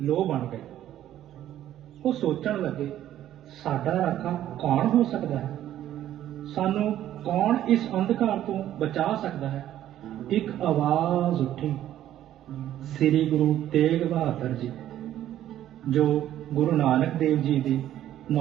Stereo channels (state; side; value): quieter; left; 12.2 dB